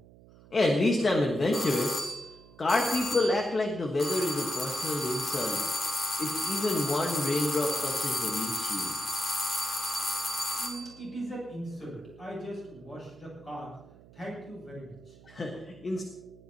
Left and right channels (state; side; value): noise; right; hum, 22 dB below the sound